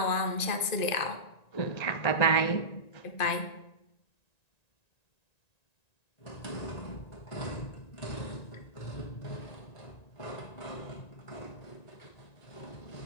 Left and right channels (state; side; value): late; right; 1.9 ms